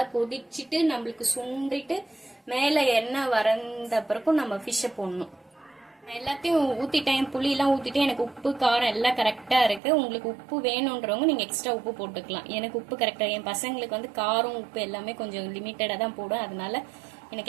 கொதிச்சுட்டு நம்மளுக்கு சுண்டிட்டு மேலே எண்ணெய் வறந்த பிறக்கும் நம்ம ஃபிஷ்ஷை போடணும். எல்லாத்தையும் ஊற்றிட்டேன், புளியெல்லாம் ஊற்றிட்டு எனக்கு உப்பு காரம் எல்லாம் கரெக்டாக இருக்குது. உங்களுக்கு உப்பு வேணுன்றவங்க நீங்கள் எக்ஸ்ட்ரா உப்பு போட்டுக்கலாம். எனக்கு உப்பு கரெக்டாக, என் பசங்களுக்கு வந்து காரம் உப்பு எல்லாமே கொஞ்சம் லிமிட்டடாக தான் போடும். அதனால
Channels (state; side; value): drops out; left; at 9.8 s